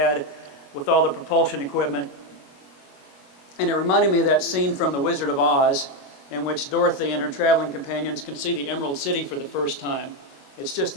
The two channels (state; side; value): late; right; 21 ms